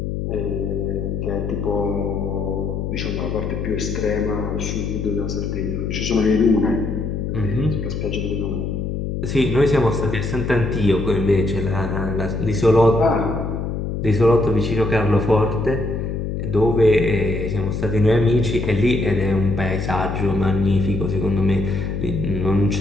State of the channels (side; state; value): left; noise; hum, 3 dB below the sound